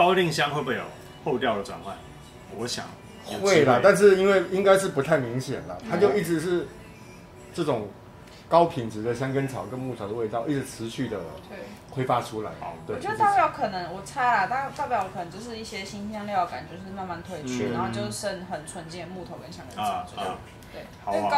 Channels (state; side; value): identical; both; correlation 1.00